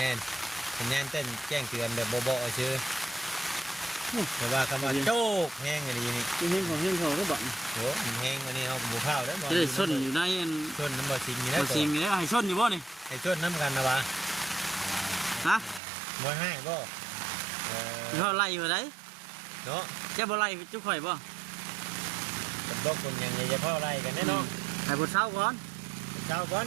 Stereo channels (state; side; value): drops out; left; at 15.8 s